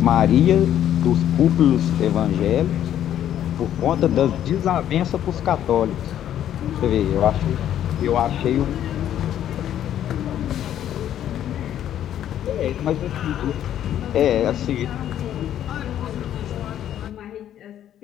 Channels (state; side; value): quieter; right; 10.9 dB